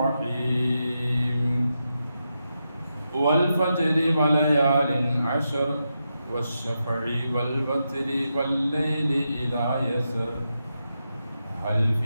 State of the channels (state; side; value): inverted; both; correlation -0.86